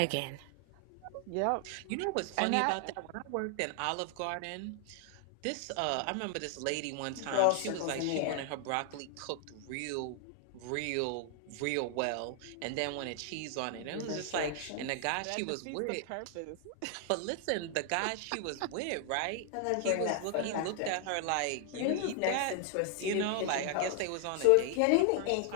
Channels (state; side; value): different; both; correlation 0.00